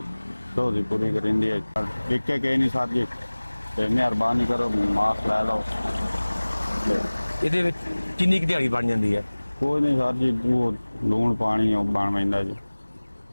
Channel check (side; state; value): both; inverted; correlation -1.00